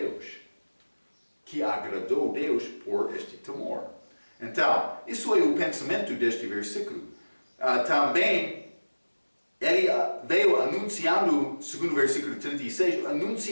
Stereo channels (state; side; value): inverted; both; correlation -1.00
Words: que agradou Deus por este temor. Então, isso é o pensamento deste versículo. Também, ele veio anunciando, segundo o versículo 36,